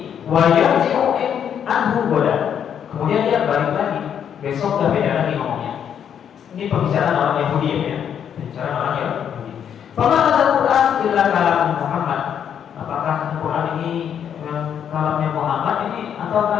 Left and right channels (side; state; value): right; quieter; 8.6 dB